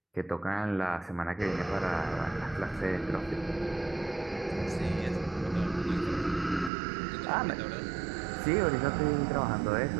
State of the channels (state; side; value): drops out; left; at 6.7 s